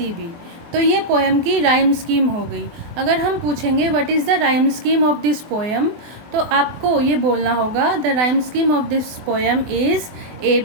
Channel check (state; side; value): late; left; 24 ms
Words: तो ये पोएम की राइम स्कीम हो गई। अगर हम पूछेंगे what is the rhyme scheme of this poem, तो आपको ये बोलना होगा the rhyme scheme of this poem is